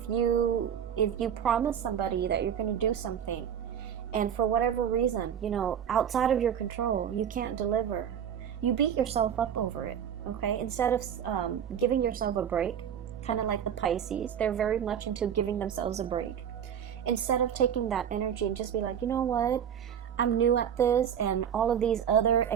you promise somebody that you're going to do something, and for whatever reason, outside of your control, you can't deliver, you beat yourself up over it. Okay, instead of giving yourself a break, kind of like the Pisces, they're very much into giving themselves a break. Instead of taking that energy and just be like, you know what, I'm new at this, and all of these other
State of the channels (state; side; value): quieter; left; 8.8 dB